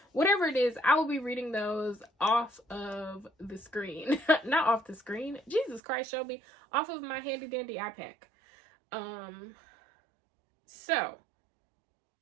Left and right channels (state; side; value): drops out; left; at 5.8 s